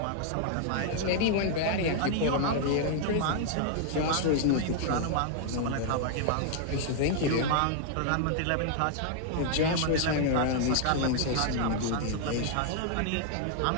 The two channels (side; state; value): both; different; correlation 0.00